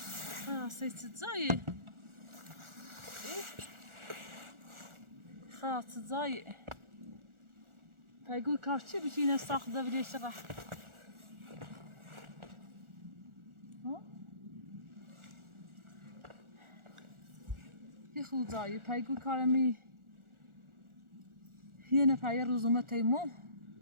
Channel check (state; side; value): late; left; 1.4 ms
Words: خلاص زای خلاص زای پایگوی کار چی بشه اینه ساخت بیرش را یه خود زای پایگوی کارمی یه نفر روزومه تیمو